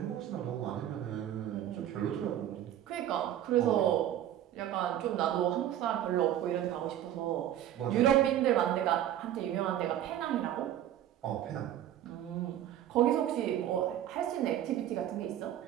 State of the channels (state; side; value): quieter; left; 11.6 dB